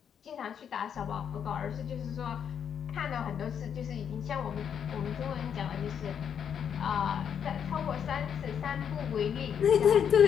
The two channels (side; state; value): right; quieter; 8.0 dB